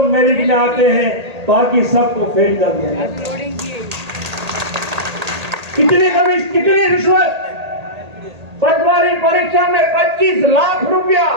मेरिट में आते हैं, बाकी सबको फेल कर दिया है। कितनी रिश्वत? पटवारी परीक्षा में 25 लाख रुपया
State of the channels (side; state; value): left; late; 1.8 ms